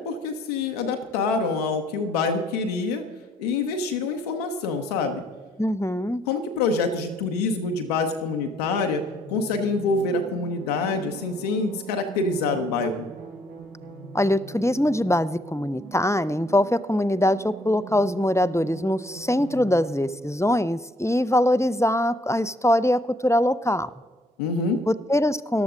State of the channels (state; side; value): normal; both; correlation 0.65